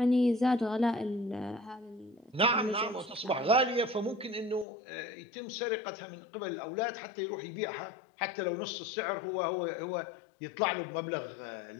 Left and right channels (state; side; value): drops out; right; at 4.7 s